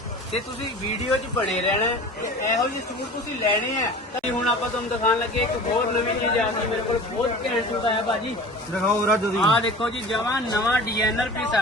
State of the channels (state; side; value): normal; both; correlation 0.39